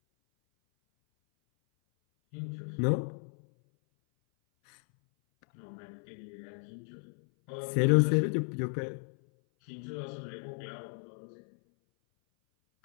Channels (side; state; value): right; silent; 55 dB below the other